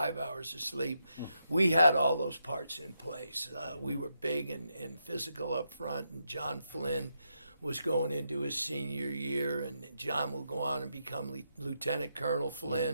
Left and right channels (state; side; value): inverted; both; correlation -0.82